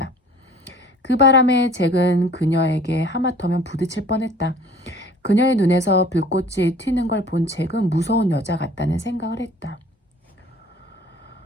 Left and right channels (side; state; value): both; normal; correlation 0.50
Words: 그 바람에 잭은 그녀에게 하마터면 부딪힐 뻔했다. 그녀의 눈에서 불꽃이 튀는 걸 본 잭은 무서운 여자 같다는 생각을 했다.